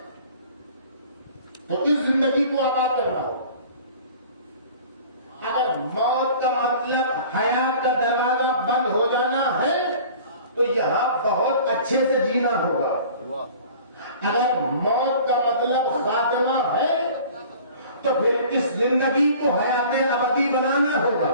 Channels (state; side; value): inverted; both; correlation -0.46